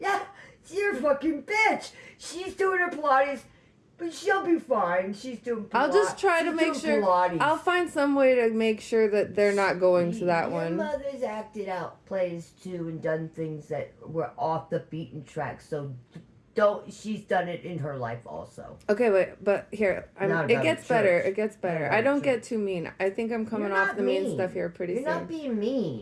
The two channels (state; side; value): identical; both; correlation 1.00